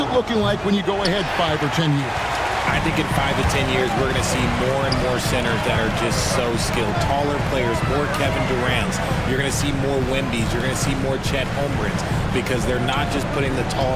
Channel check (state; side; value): identical; both; correlation 1.00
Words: looking like when you go ahead 5 or 10 years? I think in 5 to 10 years, we're going to see more and more centers that are just so skilled. Taller players, more Kevin Durant's. You're going to see more Wemby's. You're going to see more Chet Holmgrens because they're not just putting the